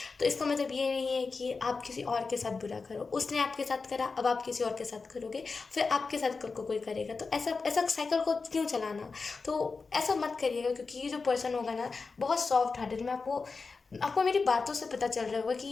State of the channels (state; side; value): quieter; right; 4.4 dB